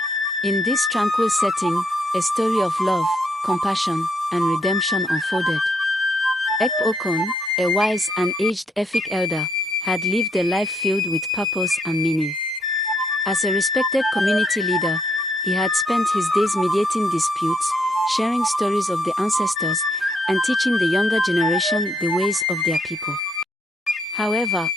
In this tranquil setting, a story of love, compassion, and redemption unfolded. Ek Okon, a wise and aged Efik elder, had lived a life filled with purpose and meaning. As a respected community leader, he had spent his days mediating disputes, sharing stories of the ancestors, and teaching the younger generation the ways of their people. However,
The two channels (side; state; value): both; normal; correlation 0.73